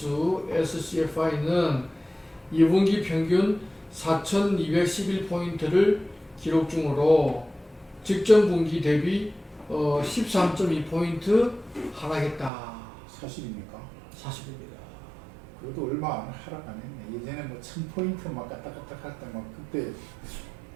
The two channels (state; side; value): drops out; left; at 12.5 s